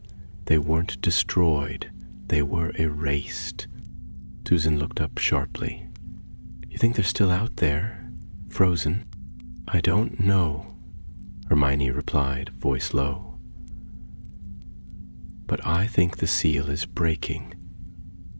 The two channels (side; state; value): both; inverted; correlation -1.00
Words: They weren't destroyed, they were erased. Susan looked up sharply. You think they're still out there, frozen? I don't know, Hermione replied, voice low. But I think the seal is breaking.